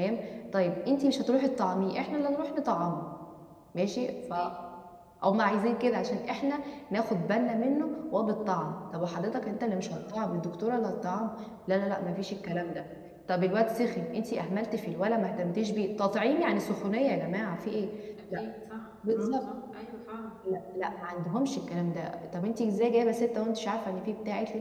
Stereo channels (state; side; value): identical; both; correlation 1.00